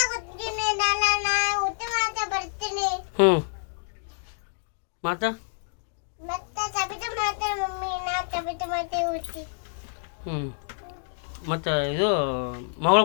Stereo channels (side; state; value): right; silent; digital silence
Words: ಹ್ಞೂ ಮತ್ತು ಹ್ಞೂ ಮತ್ತು ಇದು ಮಗಳು